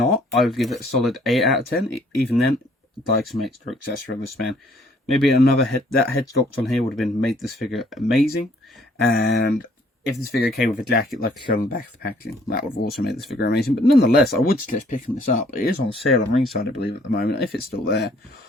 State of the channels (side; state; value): both; normal; correlation 0.62